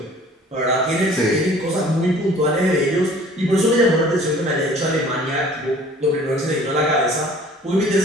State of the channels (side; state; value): both; normal; correlation 0.51